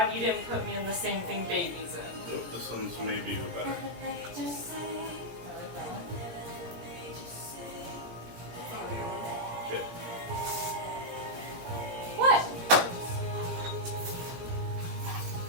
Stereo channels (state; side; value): late; left; 17 ms